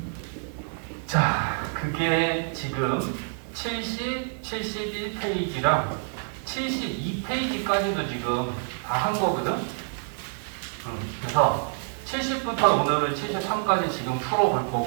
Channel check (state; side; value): silent; left; 60 dB below the other